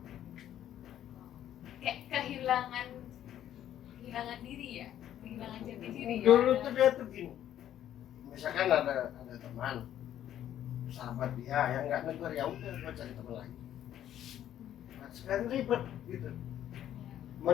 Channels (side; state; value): right; quieter; 11.3 dB